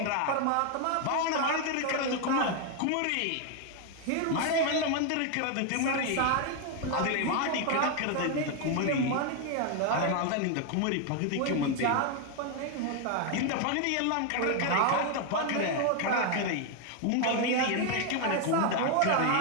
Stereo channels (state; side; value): different; both; correlation 0.01